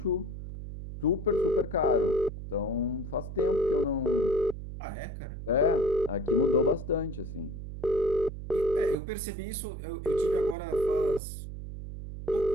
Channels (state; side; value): noise; right; hum, 9 dB below the sound